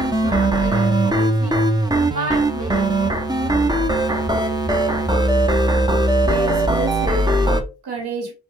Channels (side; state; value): both; normal; correlation 0.69